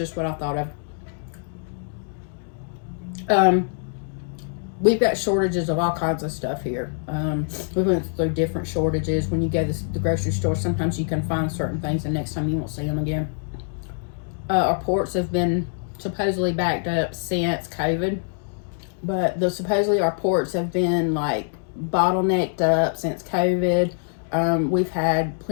what I thought of. We've got shortages of all kinds of stuff here. We went through different shortages. When you go to the grocery store, sometimes you can find certain things, and next time you won't see them again. Our ports have been supposedly backed up since COVID, but supposedly our ports have been like bottlenecked up since COVID. We've had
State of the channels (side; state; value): right; silent; digital silence